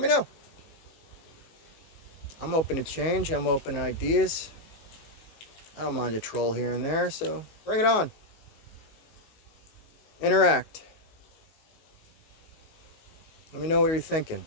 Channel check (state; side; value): late; right; 19 ms